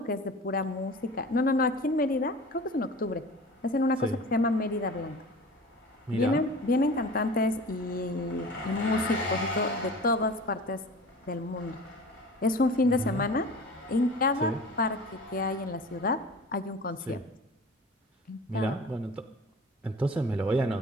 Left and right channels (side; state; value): both; normal; correlation 0.39